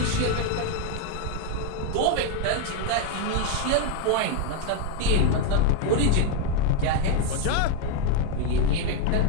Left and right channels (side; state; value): both; different; correlation 0.01